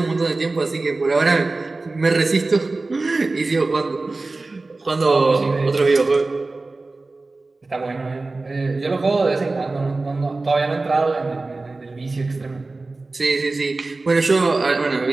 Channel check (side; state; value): left; quieter; 3.4 dB